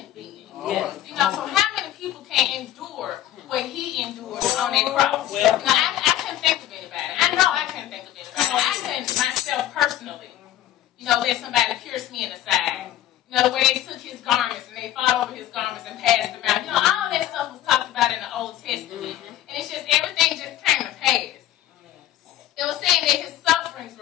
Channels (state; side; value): quieter; right; 12.9 dB